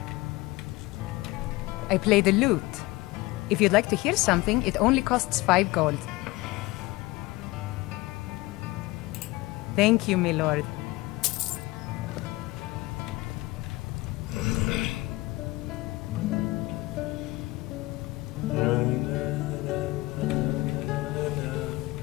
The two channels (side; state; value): right; quieter; 20.7 dB